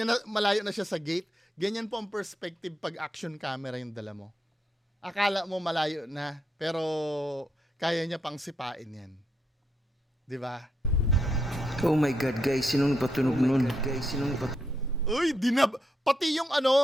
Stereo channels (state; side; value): normal; both; correlation 0.81